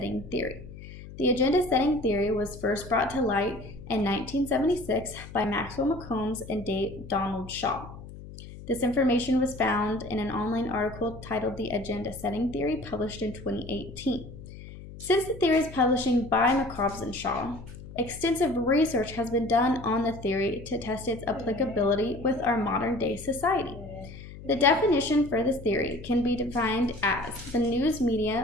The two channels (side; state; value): left; noise; hum, 15 dB below the sound